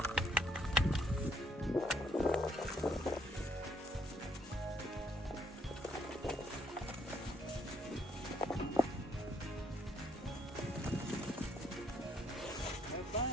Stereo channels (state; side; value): normal; both; correlation 0.69